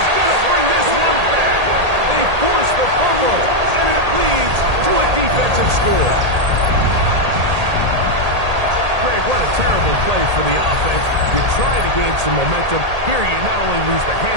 going to bring this one back. They force the fumble, and it leads to a defensive score. Greg, what a terrible play for the offense. You try to gain some momentum. Here you not only lose the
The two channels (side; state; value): left; late; 1.8 ms